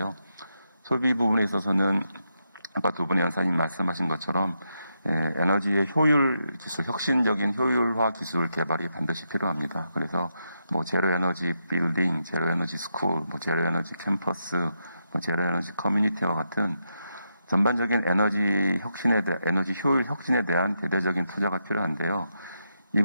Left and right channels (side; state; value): both; inverted; correlation -0.83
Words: 소비 부분에 있어서는 아까 두 분의 연사님 말씀하신 것처럼 에너지의 효율 기술, 혁신적인 효율화 기술 개발이 반드시 필요합니다. 그래서 제로 에너지 빌딩, 제로 에너지 스쿨, 제로 에너지 캠퍼스, 제로 에너지 커뮤니티와 같은 전반적인 에너지 효율 혁신에 대한 대대적인 투자가 필요한데요. 이